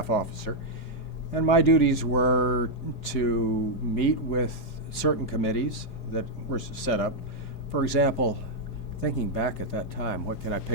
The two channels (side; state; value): right; late; 4.9 ms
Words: officer, And my duties were to meet with certain committees that were set up. For example, thinking back at that time, what can I